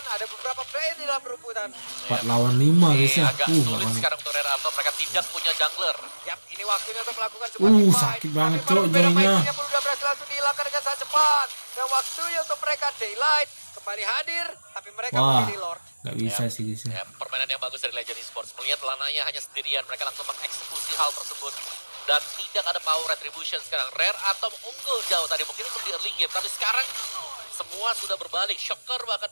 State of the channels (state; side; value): inverted; both; correlation -1.00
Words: ada beberapa player di dalam perebutan. 4 lawan 5 guys ya. Agak sulit Bahkan- sekarang untuk Rare Atom. Mereka tidak punya jungler. Yap, ini waktunya untuk melakukan sebuah team fight. sakit banget, Tapi Cok, berbeda joinnya. Mikey-nya pun udah berhasil langsung dihilangkan dengan sangat cepat. Dan waktunya untuk mereka Daylight kembali hadir, tapi mereka Wah, memilih Lord. gak bisa sih guys ya. Ya, permainan yang bagus dari Legend Esports. Melihat Lanaya hanya sendirian, mereka langsung mengeksekusi hal tersebut. Dan tidak ada power retribution sekarang. Rare Atom unggul jauh tadi mungkin untuk di early game. Tapi sekarang semua sudah berbalik. Shocker bahkan